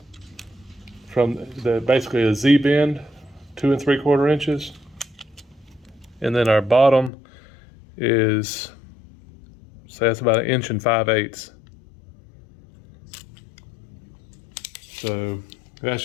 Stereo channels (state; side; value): drops out; right; at 7.1 s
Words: from basically a Z bend, 2 3/4 inches. And then our bottom is, say that's about 1 5/8 inches. So that's